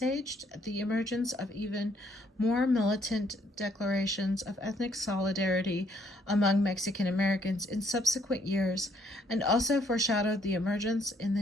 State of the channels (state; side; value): normal; both; correlation 0.68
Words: the emergence of even more militant declarations of ethnic solidarity among Mexican Americans in subsequent years, and also foreshadowed the emergence in the